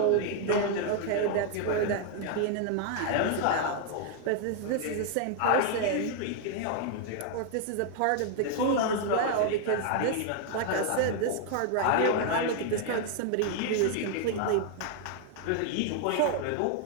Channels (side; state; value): both; different; correlation 0.00